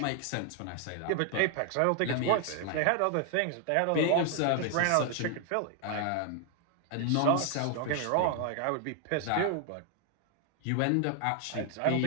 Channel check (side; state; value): both; different; correlation 0.00